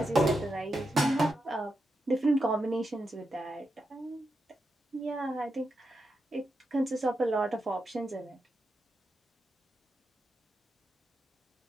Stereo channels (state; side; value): normal; both; correlation 0.86